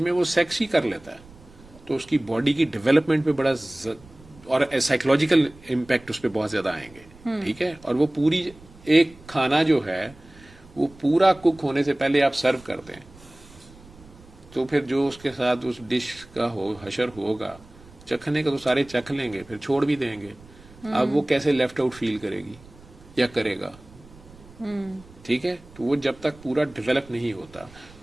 वो सेक्स ही कर लेता है, तो उसकी बॉडी की डेवलपमेंट पे बड़ा और साइकोलॉजिकल इम्पैक्ट उस पर बहुत ज़्यादा आएंगे, ठीक है। और वो पूरी एक खाना जो है वो पूरा कुक होने से पहले आप सर्व कर दें, तो फिर जो उसके साथ उस डिश का हशर होगा, चखने का तो सारे चख लेंगे, फिर छोड़ भी देंगे। अब वो कैसे लेफ्ट आउट फील करेगी या करेगा, ठीक है। तो वो जब तक पूरा डेवलप नहीं होता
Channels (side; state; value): right; noise; rumble, 23 dB below the sound